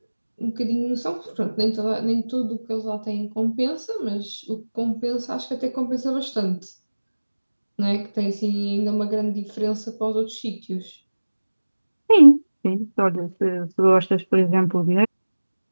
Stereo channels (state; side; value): inverted; both; correlation -1.00